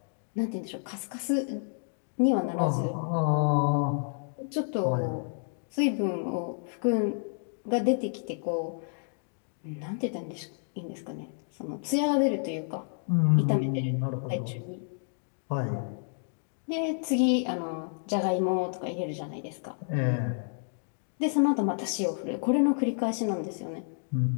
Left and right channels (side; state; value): right; silent; digital silence